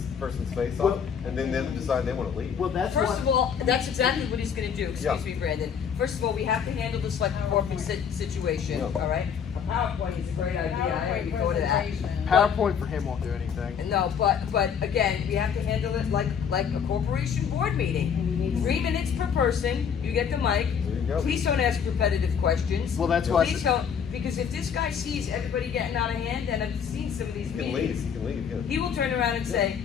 person's face off, and then them decide they want to leave. Well, that's First what. of all, that's exactly what he's gonna do, Yeah. excuse me, Brandon. First of all, we have to handle this like a corporate situation, Yeah. all right? A PowerPoint is a great idea, I already thought of that. PowerPoint for him won't do anything. No, but again, we have to handle it like a corporation board meeting. 3 minutes per person, you get the mic. There you go. Please don't ask repetitive questions. Well, that's why I Please said- don't, because if this guy sees everybody getting out of hand, and I've seen some of these You can leave. meetings, You can leave. Yeah. he will turn around and say,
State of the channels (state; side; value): quieter; right; 7.3 dB